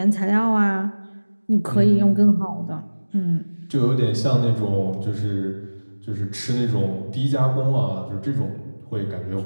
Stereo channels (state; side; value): inverted; both; correlation -1.00